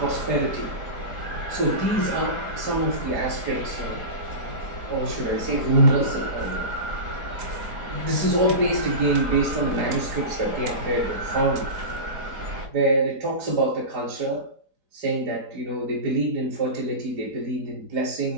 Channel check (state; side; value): late; left; 4.9 ms